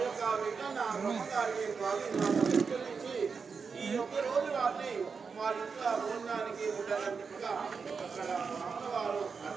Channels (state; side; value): quieter; left; 5.4 dB